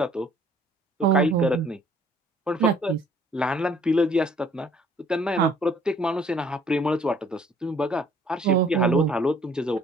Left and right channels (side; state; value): both; normal; correlation 0.59